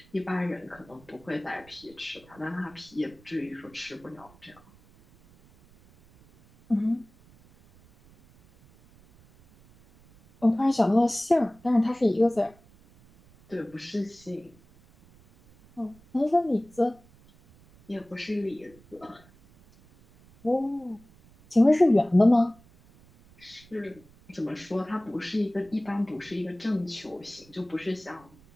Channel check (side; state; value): right; noise; rumble, 27 dB below the sound